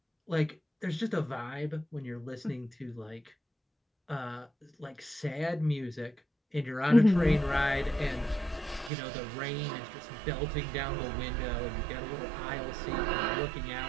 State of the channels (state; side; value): drops out; left; at 8.9 s